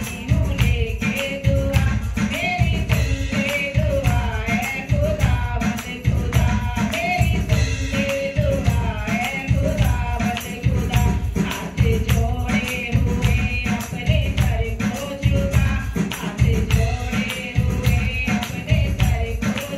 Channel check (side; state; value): both; identical; correlation 1.00